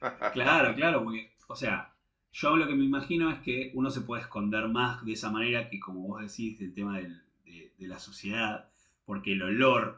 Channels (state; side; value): identical; both; correlation 1.00